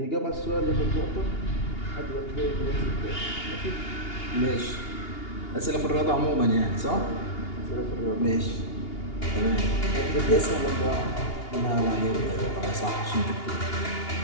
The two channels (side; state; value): right; late; 2.8 ms